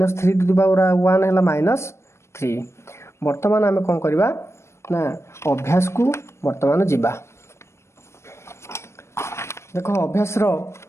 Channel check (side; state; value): right; late; 0.13 ms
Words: टू दी पावर 1 हैला -3। वर्तमान आमे कोन करबा ना अभ्यास को वर्तमान जीवा। देखो अभ्यास रो